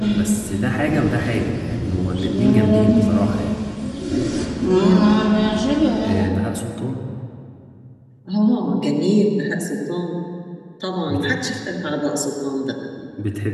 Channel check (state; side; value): identical; both; correlation 1.00